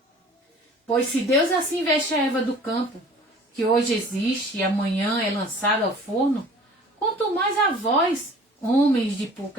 Pois se Deus assim veste a erva do campo, que hoje existe e amanhã é lançada ao forno, quanto mais a vós, homens de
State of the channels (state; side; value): normal; both; correlation 0.47